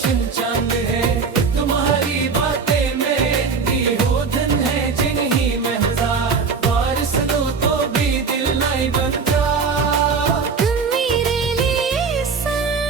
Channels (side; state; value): left; quieter; 5.2 dB